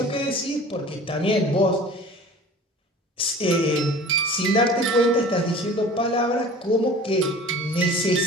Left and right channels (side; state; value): both; normal; correlation 0.43